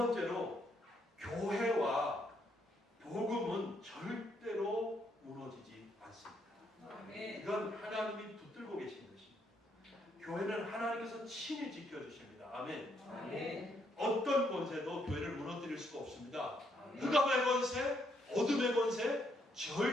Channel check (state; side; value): normal; both; correlation 0.74